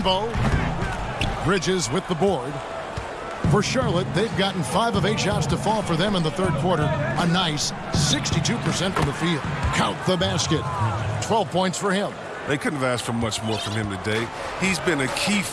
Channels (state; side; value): identical; both; correlation 1.00